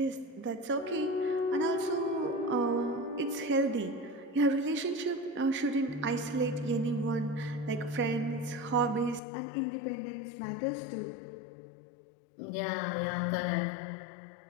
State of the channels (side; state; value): right; drops out; at 9.2 s